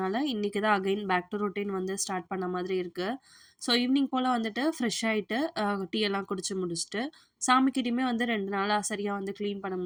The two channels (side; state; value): both; identical; correlation 1.00